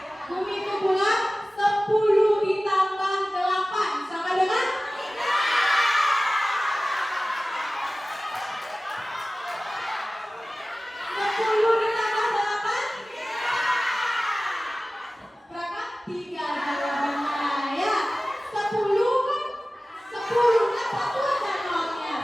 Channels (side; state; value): both; normal; correlation 0.97